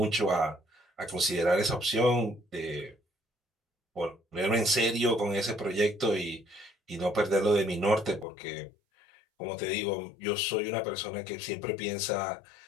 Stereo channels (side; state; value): right; drops out; at 8.2 s